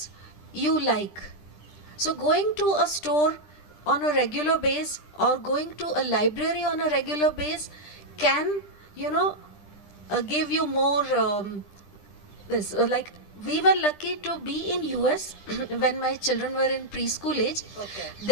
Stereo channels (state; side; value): late; right; 10 ms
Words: you like. So going to a store on a regular base or going to a library on a regular base can give you more like, we were lucky to be in US when my children were in preschool age. Okay.